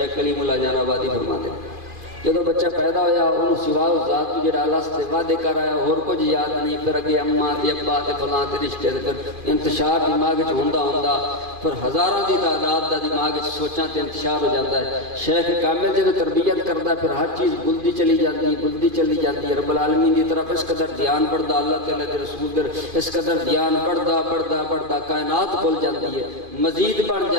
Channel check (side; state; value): left; late; 2.4 ms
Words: کلیم اللہ جان آبادی فرماتے ہیں جدو بچہ پیدا ہویا انہوں سوا ذات کو جڑا اللہ سے وعدے کر آیا اور کچھ یاد نہیں، پھر اگے اماں تے ابا تے فلاں تے رشتے تے پھر انتشار دماغ وچ ہوندا پھر ہزاراں دی تعداد دا دماغ وچ سوچاں تے انتشار ہو جاندا ہے۔ شیخ کامل جدو تربیت کردا ہے پھر ہر چیز بلدی چلی جاتی ہے۔ رب العالمین دی طرف اس قدر دھیان بڑھدا، اللہ تعالی دے رسول دے اس قدر دھیان بڑھدا کائنات بھول جاتی ہے، مزید بڑھ